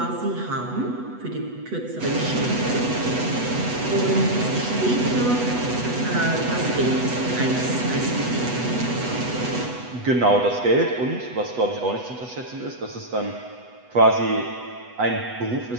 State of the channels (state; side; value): late; left; 8.1 ms